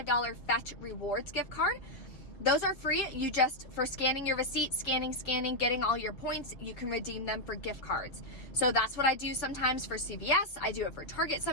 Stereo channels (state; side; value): late; right; 6.7 ms